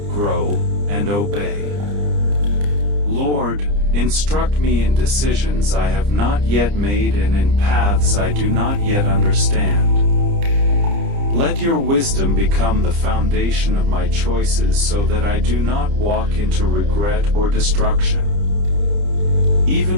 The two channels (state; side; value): late; left; 30 ms